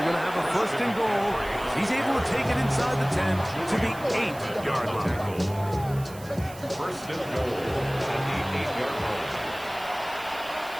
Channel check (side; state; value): right; noise; hiss, 19 dB below the sound